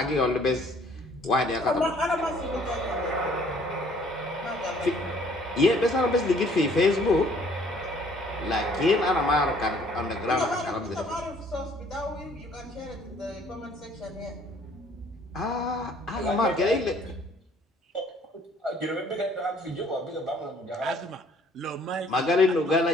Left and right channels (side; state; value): both; normal; correlation 0.59